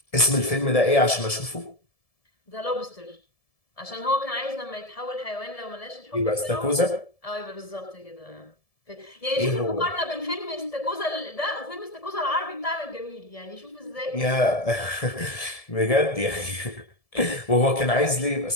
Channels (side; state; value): right; late; 1.7 ms